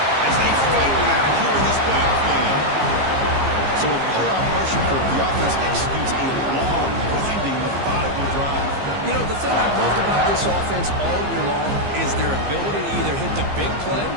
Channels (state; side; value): late; left; 15 ms